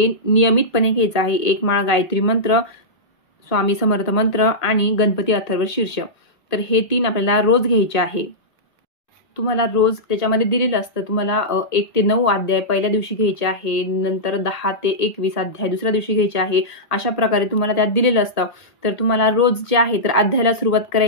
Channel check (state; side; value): late; right; 1.6 ms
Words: नियमितपणे घ्यायचं आहे. 1 माळ गायत्री मंत्र, स्वामी समर्थ मंत्र आणि गणपती अथर्व शीर्ष. तर हे 3 आपल्याला रोज घ्यायचे आहे. तुम्हाला रोज त्याच्यामध्ये दिलेलं असतं. तुम्हाला 1 ते 9 अध्याय पहिल्या दिवशी घ्यायचे आहे, नंतर 10 ते 21 अध्याय दुसऱ्या दिवशी घ्यायचे आहे. अशा प्रकारे तुम्हाला त्यात दिलेलं असतं. तर तुम्हाला रोज जे आहे तर अध्यायाला सुरुवात